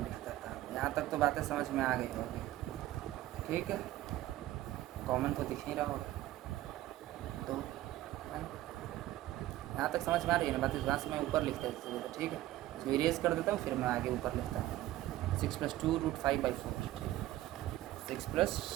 देता हूँ। यहाँ तक तो बातें समझ में आ गई होगी। ठीक है, कॉमन तो दिख नहीं रहा होगा, तो यहाँ तक समझ में आ रही है ना बात। यहाँ से मैं ऊपर लिखता हूँ, ठीक है। इसको इरेज कर देता हूँ, फिर मैं आगे ऊपर लिखता हूँ। 6 plus 2 root 5 by 4, 6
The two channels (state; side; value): quieter; left; 15.1 dB